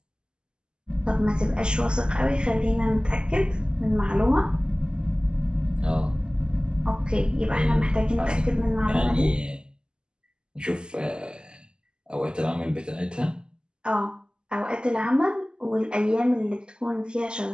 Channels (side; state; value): left; late; 0.048 ms